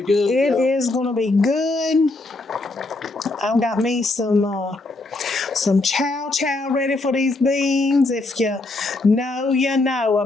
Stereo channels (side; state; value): right; quieter; 3.1 dB